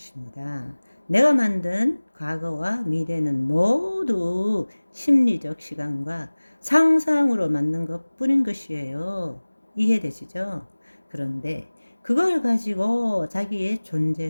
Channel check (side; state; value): both; inverted; correlation -1.00